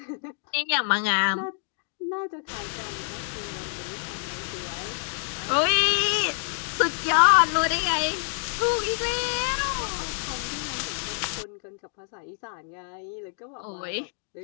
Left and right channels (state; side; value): silent; right; digital silence